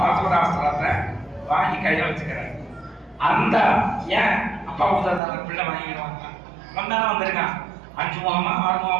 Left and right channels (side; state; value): left; drops out; at 5.2 s